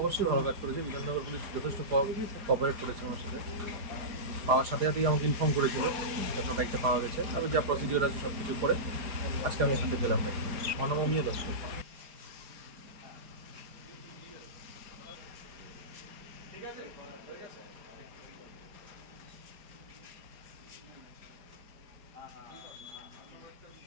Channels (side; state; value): left; late; 4.8 ms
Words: ভালো কাজ করেছে বিধাননগর পুলিশ, যথেষ্ট কোঅপারেট করেছে আমার সাথে। পাওয়ার সাথে সাথেই আমাকে ইনফর্ম করেছিল যখন বাইকটা পাওয়া গেছে। আমি যা প্রসিডিওর আছে সব কিছু করে আজকে আমি হাতে পেলাম। মানবমীয় দর্শক